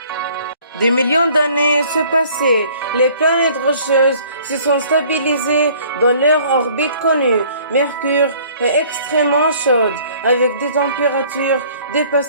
Des millions d'années se passaient, les planètes rocheuses se sont stabilisées dans leur orbite connue. Mercure est extrêmement chaude, avec des températures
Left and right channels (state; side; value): inverted; both; correlation -0.55